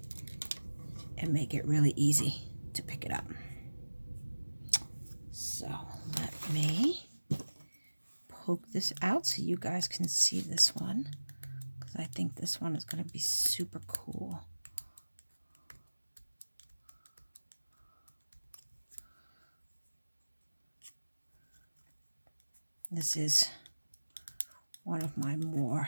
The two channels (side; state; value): both; inverted; correlation -1.00